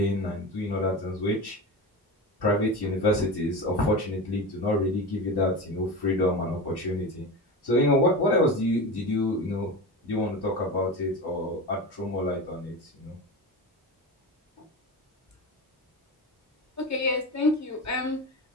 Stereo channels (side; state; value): both; normal; correlation 0.26